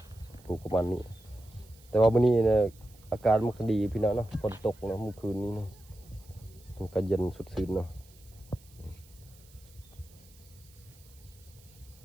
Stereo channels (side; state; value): right; noise; hiss, 26 dB below the sound